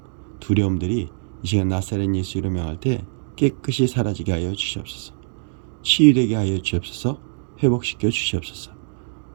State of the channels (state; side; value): silent; left; digital silence